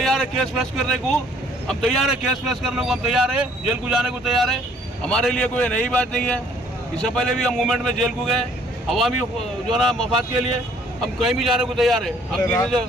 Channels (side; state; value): both; normal; correlation 0.60